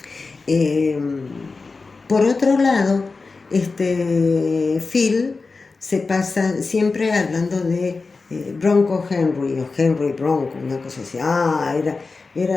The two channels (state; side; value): quieter; right; 4.1 dB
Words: Por otro lado, Phil se pasa siempre hablando de Bronco Henry o Henry Bronco, una cosa así.